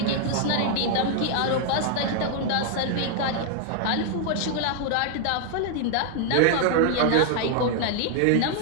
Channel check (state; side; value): different; both; correlation 0.00